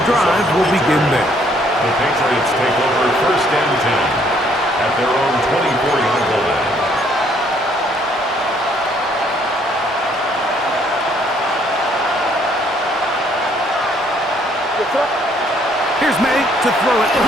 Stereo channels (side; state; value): both; normal; correlation 0.66